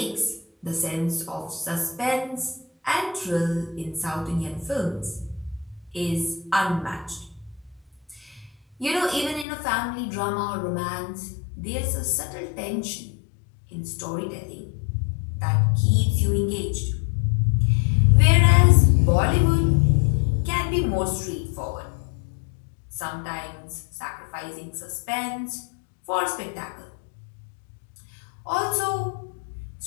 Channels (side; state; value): right; drops out; at 9.5 s